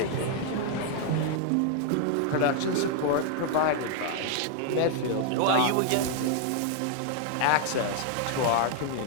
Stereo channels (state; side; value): different; both; correlation 0.00